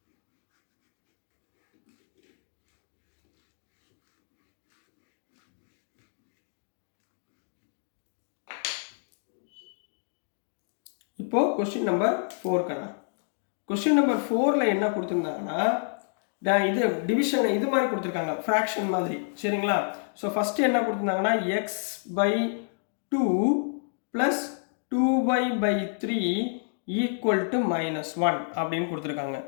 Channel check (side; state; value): right; silent; digital silence